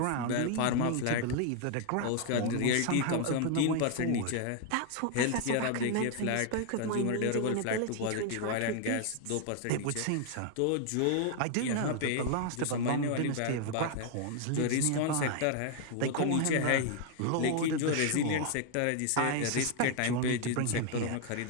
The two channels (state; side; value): different; both; correlation 0.00